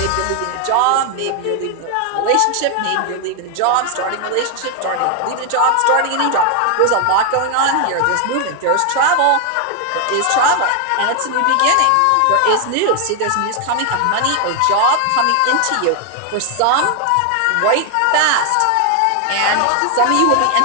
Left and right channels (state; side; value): different; both; correlation 0.00